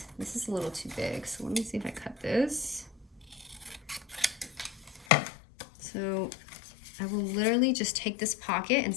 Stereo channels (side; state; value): right; drops out; at 5.1 s